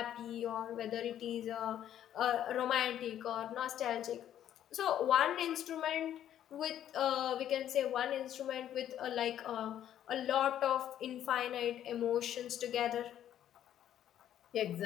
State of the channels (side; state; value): right; quieter; 10.9 dB